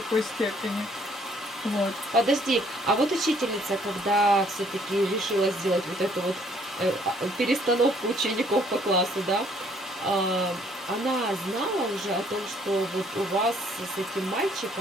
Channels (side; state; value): both; normal; correlation 0.63